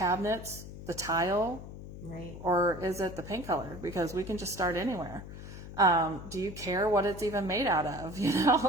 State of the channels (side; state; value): left; noise; hum, 12 dB below the sound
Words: the tile? Right. Or is it the paint color? Because we can just start anywhere. Do you care what it's even made out of?